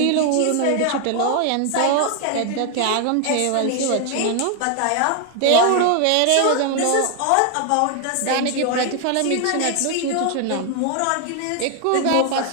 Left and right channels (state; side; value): different; both; correlation 0.00